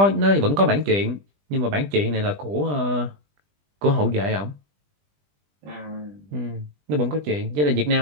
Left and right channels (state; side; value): late; left; 20 ms